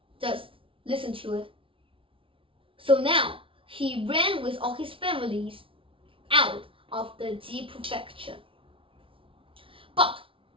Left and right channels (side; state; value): left; late; 0.25 ms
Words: just listen to it. So now he ran with all his families out of the Ji prefecture. But